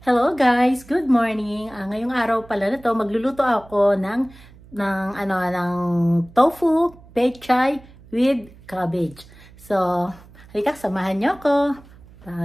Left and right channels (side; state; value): right; noise; hum, 23 dB below the sound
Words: Hello guys, good morning. Ngayong araw pala na to, magluluto ako ng tofu pechay with cabbage. So, halika samahan niyo ako